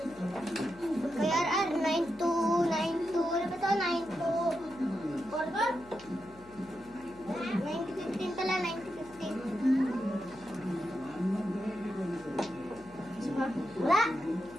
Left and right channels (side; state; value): left; noise; hum, 22 dB below the sound